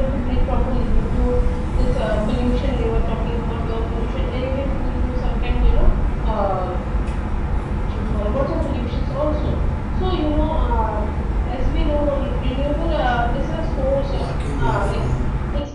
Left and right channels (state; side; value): identical; both; correlation 1.00